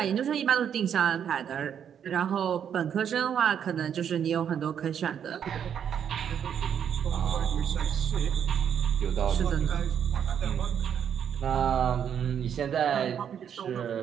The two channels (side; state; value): left; quieter; 8.5 dB